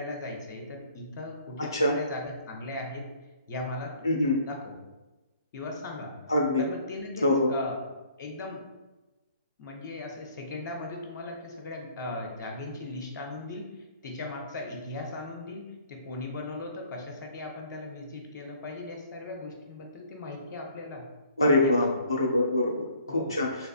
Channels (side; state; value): both; inverted; correlation -0.57